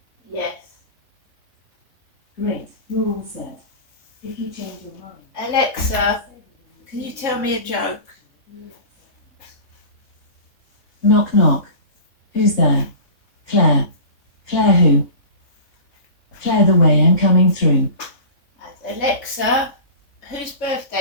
Yes. Great, you're all set. If you change your mind... Alexa, can you tell me a joke? Knock knock. Who's there? Claire. Claire who? Claire the way I'm coming through. And Alexa, whose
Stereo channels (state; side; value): late; right; 3.5 ms